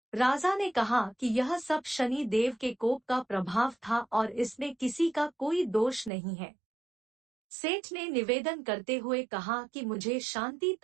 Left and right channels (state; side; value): drops out; left; at 6.1 s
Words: राजा ने कहा कि यह सब शनि देव के कोप का प्रभाव था और इसमें किसी का कोई दोष नहीं है। सेठ ने निवेदन करते हुए कहा कि मुझे शांति